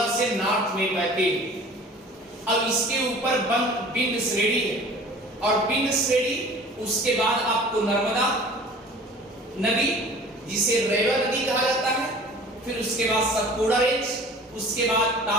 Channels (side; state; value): both; normal; correlation 0.45